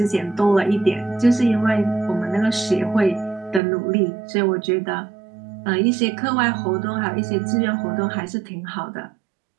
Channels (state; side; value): drops out; left; at 3.6 s